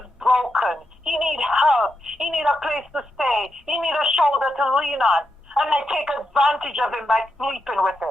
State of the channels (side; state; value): both; normal; correlation 0.85